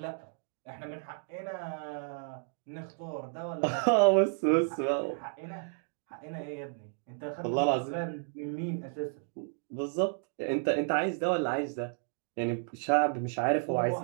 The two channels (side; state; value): left; silent; 56 dB below the other